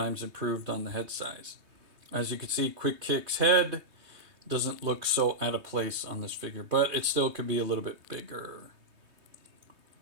improved on the head size. As you can see, Quick Kick's head doesn't look so out of place on this figure, but it still could be a little bit bigger.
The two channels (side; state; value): left; late; 3.2 ms